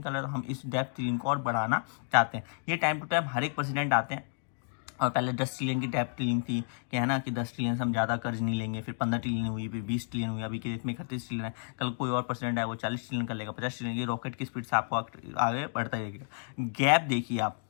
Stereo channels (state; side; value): silent; right; 57 dB below the other